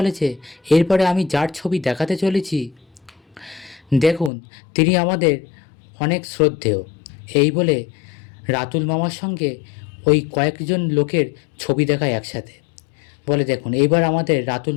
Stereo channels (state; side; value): drops out; right; at 4.3 s